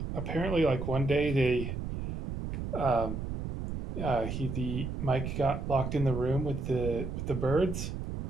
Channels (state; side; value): noise; right; rumble, 5 dB below the sound